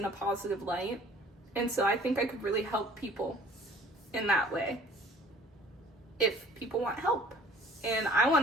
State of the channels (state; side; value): normal; both; correlation 0.52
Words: a positive light. And so I think I could really help people in that way if people want help. And I